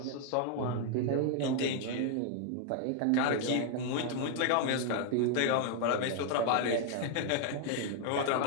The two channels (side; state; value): both; different; correlation 0.00